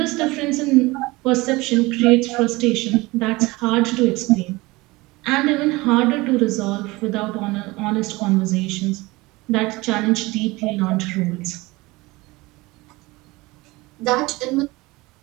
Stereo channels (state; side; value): quieter; left; 21.9 dB